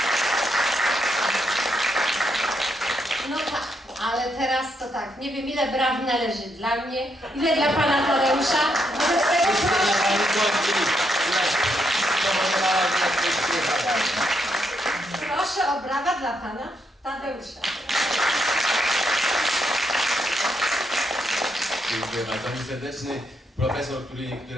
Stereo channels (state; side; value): normal; both; correlation 0.78